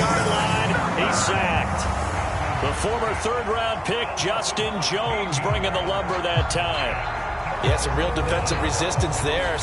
line, he's sacked. The former 3rd-round pick, Justin Jones, bringing the lumber that time. Yeah, some real defensive resistance there,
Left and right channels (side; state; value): both; identical; correlation 1.00